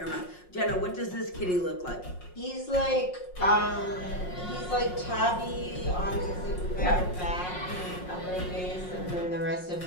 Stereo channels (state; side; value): late; right; 5.5 ms